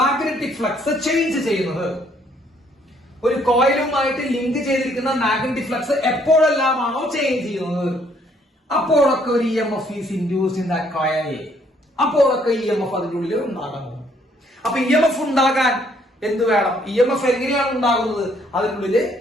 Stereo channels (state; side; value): normal; both; correlation 0.66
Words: ഫ്ലക്സ് ചേഞ്ച് ചെയ്യുന്നത്, ഒരു കോയിലുമായിട്ട് ലിങ്ക് ചെയ്തിരിക്കുന്ന മാഗ്നറ്റിക് ഫ്ലക്സ് എപ്പോഴെല്ലാമാണോ ചേഞ്ച് ചെയ്യുന്നത്, അപ്പോഴൊക്കെ ഒരു EMF is induced in that coil. അപ്പോഴൊക്കെ EMF അതിന്റെ ഉള്ളിൽ ഉണ്ടാകുന്നു. അപ്പൊ EMF ഉണ്ടാകാൻ എന്ത് വേണം? EMF എങ്ങനെയാണ് ഉണ്ടാകുന്നത്? അതിനുള്ളിൽ